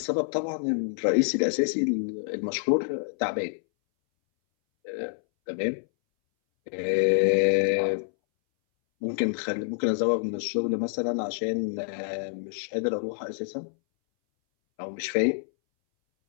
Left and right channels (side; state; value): right; silent; 60 dB below the other